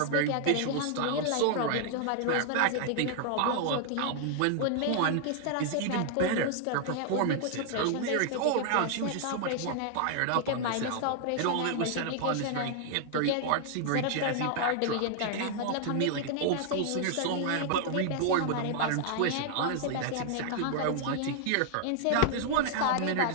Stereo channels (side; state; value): both; different; correlation 0.00